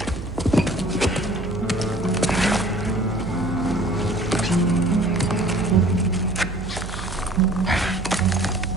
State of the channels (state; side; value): noise; right; hum, 10 dB below the sound